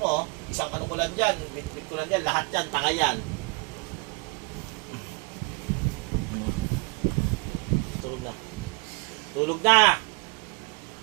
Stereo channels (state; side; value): quieter; left; 31.5 dB